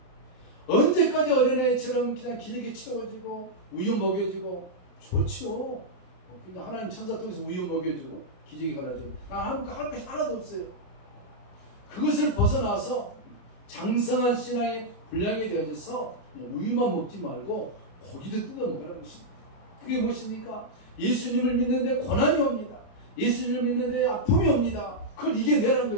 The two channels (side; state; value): right; late; 28 ms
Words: 언제까지 어린아이처럼 그냥 기저귀 채워지고 우유 먹여주고 좋지요. 하나님 천사 통해서 우유 먹여주고 기저귀 갈아주고 난 할 것이 하나도 없어요. 그것을 벗어나서 장성한 신앙의 분량이 되어져서 우유만 먹지 말고 고기도 뜯어 먹으라는 것입니다. 그게 무엇입니까? 예수님을 믿는데 고난이 옵니다. 예수님을 믿는데 아픔이 옵니다. 그걸 이겨내라는